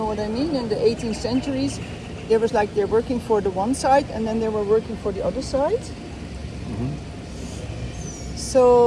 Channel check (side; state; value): both; identical; correlation 1.00